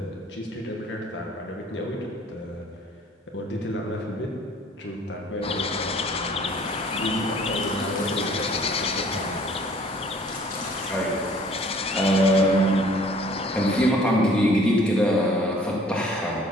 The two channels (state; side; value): normal; both; correlation 0.55